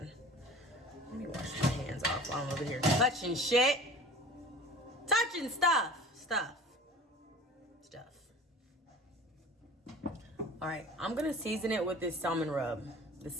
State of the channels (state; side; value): normal; both; correlation 0.41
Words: Let me wash my hands off while I'm over here touching shit. Touching stuff. All right, I'm gonna season it with this salmon rub. The